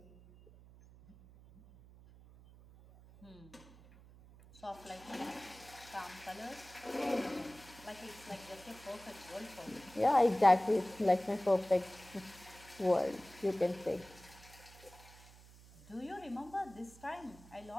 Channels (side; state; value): right; noise; hum, 21 dB below the sound